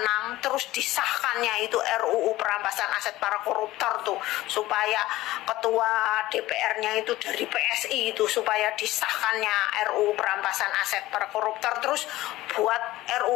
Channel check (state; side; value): quieter; right; 16.9 dB